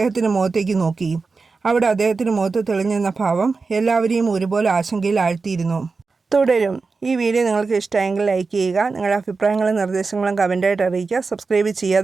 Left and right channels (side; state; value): left; quieter; 4.3 dB